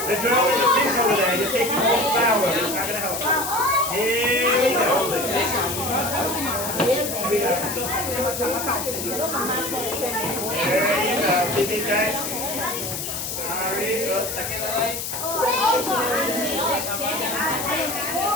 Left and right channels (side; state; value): left; noise; hiss, 5 dB below the sound